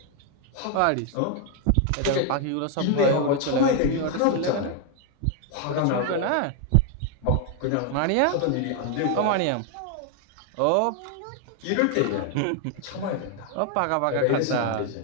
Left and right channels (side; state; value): both; different; correlation 0.00